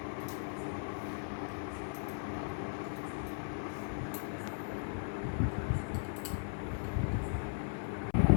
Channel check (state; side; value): silent; right; 53 dB below the other